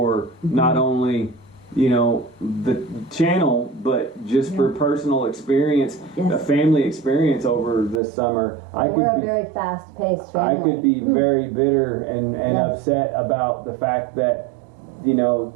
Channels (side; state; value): left; drops out; at 8.0 s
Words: not only, you know, the channel, but just for personal experience, a family experience over this summer. We're a very fast-paced family. I could be very bitter and upset about the fact that, you know,